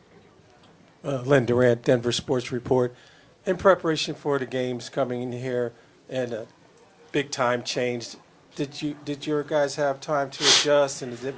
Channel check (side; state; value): both; identical; correlation 1.00